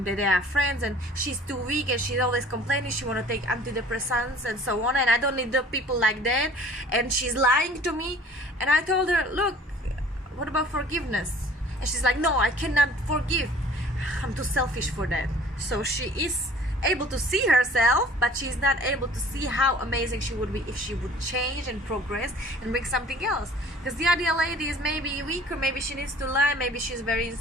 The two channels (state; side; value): normal; both; correlation 0.49